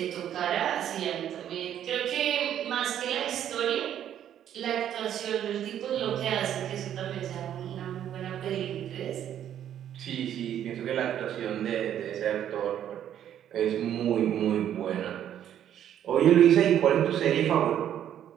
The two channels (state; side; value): quieter; left; 10.4 dB